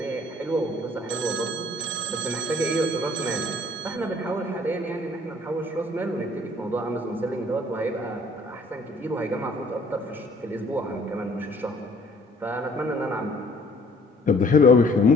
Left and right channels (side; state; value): both; normal; correlation 0.57